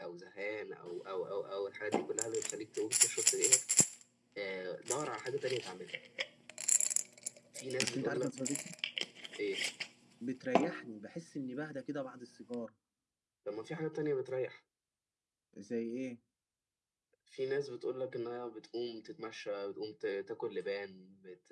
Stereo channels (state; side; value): identical; both; correlation 1.00